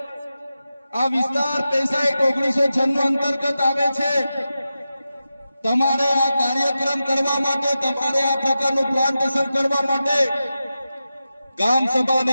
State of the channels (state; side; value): inverted; both; correlation -0.92